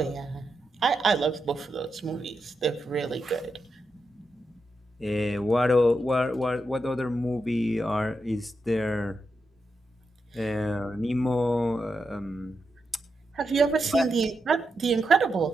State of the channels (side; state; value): both; normal; correlation 0.86